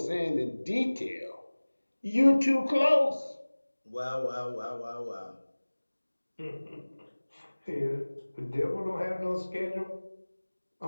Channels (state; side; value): inverted; both; correlation -1.00